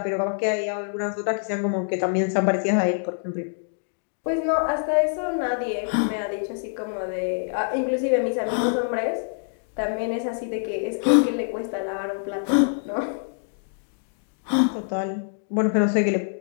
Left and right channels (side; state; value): right; silent; digital silence